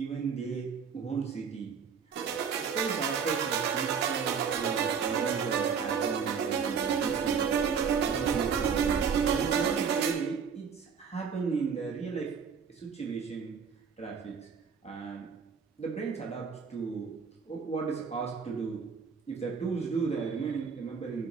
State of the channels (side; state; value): left; quieter; 6.3 dB